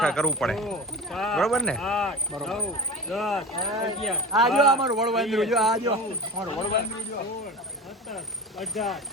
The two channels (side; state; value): both; normal; correlation 0.31